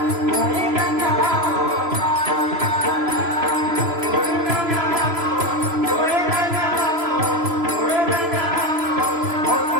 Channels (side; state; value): left; late; 3.0 ms